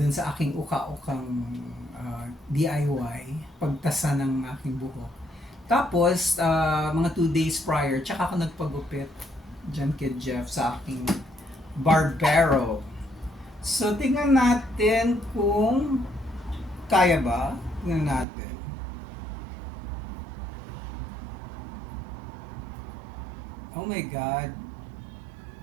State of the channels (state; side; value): drops out; left; at 18.2 s